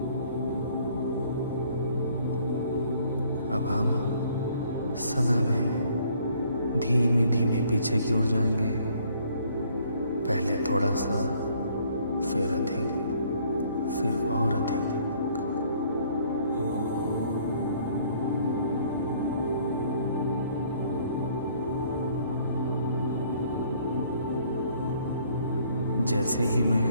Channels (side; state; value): both; inverted; correlation -0.61